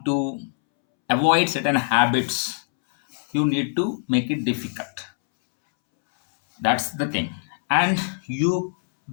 to avoid certain habits, you need to make it difficult. That's the thing. And you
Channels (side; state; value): right; silent; 63 dB below the other